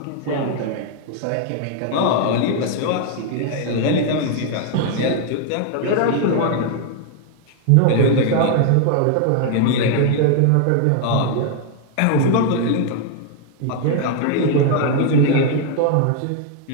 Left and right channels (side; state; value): both; different; correlation 0.00